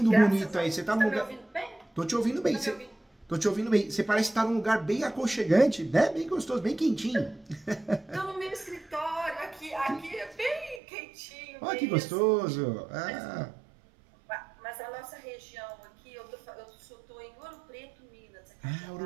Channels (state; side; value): drops out; left; at 10.8 s